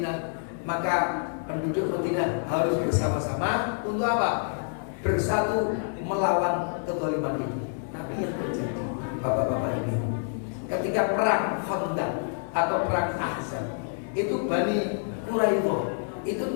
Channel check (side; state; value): right; silent; digital silence